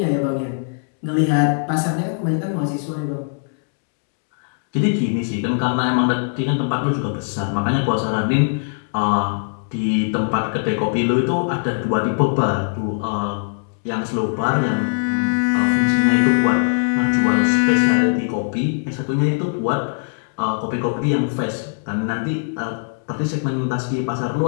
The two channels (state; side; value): silent; right; digital silence